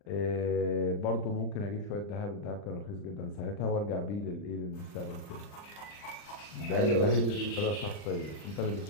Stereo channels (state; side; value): late; right; 39 ms